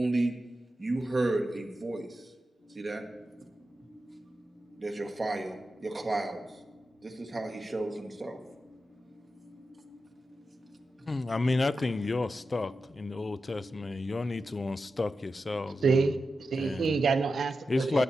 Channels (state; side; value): normal; both; correlation 0.90